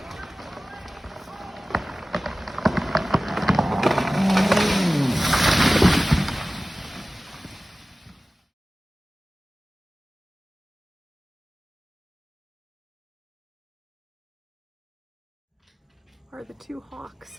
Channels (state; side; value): normal; both; correlation 0.97